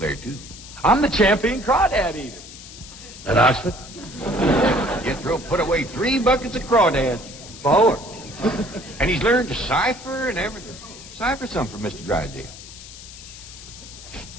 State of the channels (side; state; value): left; noise; hiss, 16 dB below the sound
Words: too. I'm the champion crawdad eater. At Oxford? Jethro put away 3 buckets of crawdads. 4. And he's learned to cipher and everything. Cipher some for Mr. Drysdale.